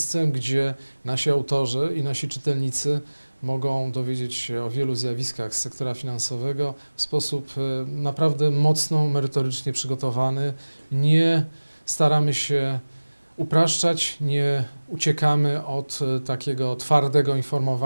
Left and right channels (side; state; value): both; inverted; correlation -1.00